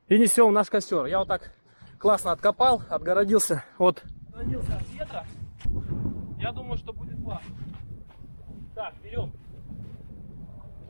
и несем в наш костер. Я вот так классно откопал, отгородился от ветра. Я думаю, что будет классно. Так, берем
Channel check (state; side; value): inverted; both; correlation -1.00